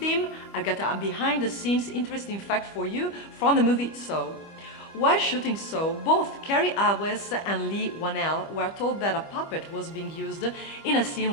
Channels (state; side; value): late; right; 25 ms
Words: I've got a behind-the-scenes interesting fact for you from the movie Saw. While shooting Saw, both Cary Elwes and Lee Whannell were told that a puppet was being used in a scene